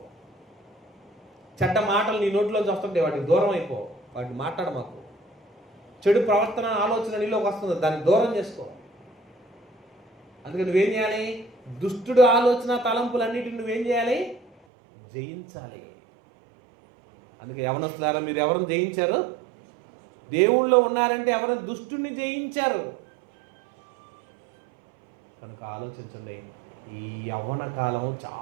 చెడ్డ మాటలు నీ నోట్లోంచి వస్తుంటాయి, వాటికి దూరం అయిపో. వాటిని మాట్లాడ మాకు. చెడు ప్రవర్తన ఆలోచన నీలోకి వస్తుంది, దాన్ని దూరం చేసుకో. అందుకని నువ్వేం చేయాలి? దుష్టుడు ఆలోచన తలంపులన్నిటిని నువ్వేం చేయాలి? జయించాలి. అందుకే యవనస్తులారా, మీరు ఎవరిని జయించారు? దేవుళ్ళో ఉన్నారంటే ఎవరిని? దుష్టుని జయించారు. కనుక ఆలోచించండి, ఈ యవ్వన కాలం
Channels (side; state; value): left; drops out; at 14.5 s